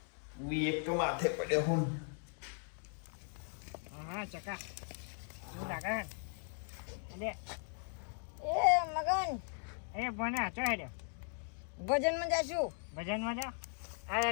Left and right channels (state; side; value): silent; right; 52 dB below the other